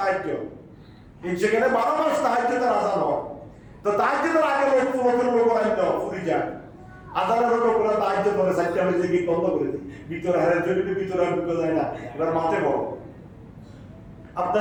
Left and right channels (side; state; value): both; identical; correlation 1.00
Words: সেখানে 12 মাস তাহাজ্জুদের আযান হয়। তো তাহাজ্জুদের আগে লোক আইতো ফুরি যায়, আযানের লোকরা তাহাজ্জুদ করে 4টা বাজে গিয়ে বন্ধ করে দিই, ভিতরে হারের জন্য ভিতরে ঢুকে যায় না, এবার মাঠে বড়।